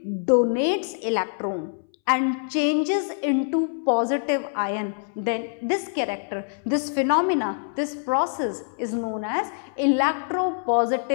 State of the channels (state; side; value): silent; right; 62 dB below the other